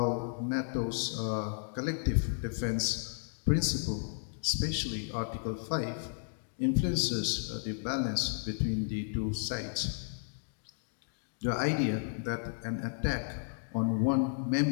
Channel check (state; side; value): silent; right; digital silence